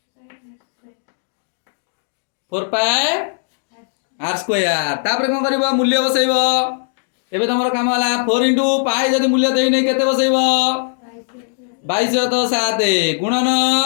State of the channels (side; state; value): right; silent; digital silence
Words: 4 पाई r स्क्वायर तापर कोन करबो मूल्य बसैबो एबे तमरो काम होला 4 * पाई जदी मूल्य देई नै केते बसैबो 22 तो 7 गुणन